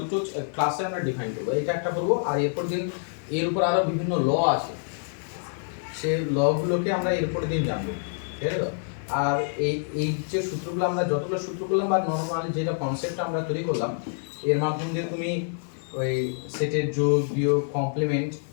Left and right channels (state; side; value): silent; right; digital silence